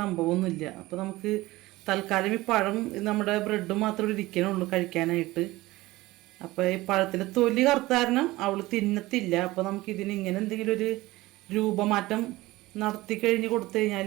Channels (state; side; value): quieter; left; 18.9 dB